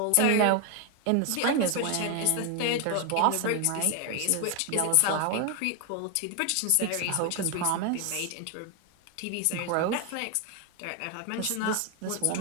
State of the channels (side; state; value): both; different; correlation 0.01